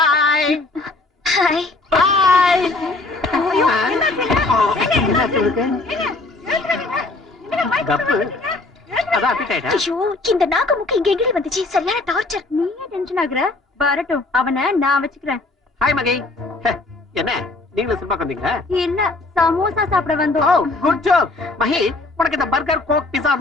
கப்பு அதான் appetite ஆ? ஐயோ இந்த நாக்கு முக்கு இங்க எங்கடி வந்துச்சு சரியான டார்ச்சர் நீயே டென்ஷன் ஆகுற வரட்டும் அவனை நான் வச்சுக்கிறேன் ஹாய் மகி ஹே, என்ன நீங்களும் சினிமாக்கு வந்தீங்களா இல்ல சமோசா சாப்பிட ஓ வந்தோம் குட் ஜாப் மகி உனக்கு இந்த பர்கர் கோக் பிஸா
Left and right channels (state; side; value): quieter; right; 3.2 dB